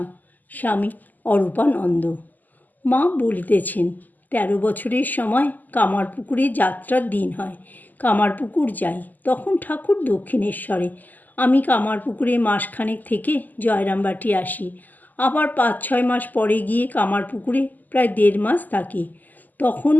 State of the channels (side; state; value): right; late; 0.084 ms